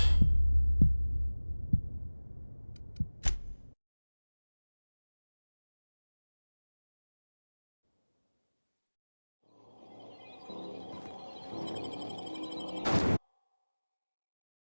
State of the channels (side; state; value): both; inverted; correlation -1.00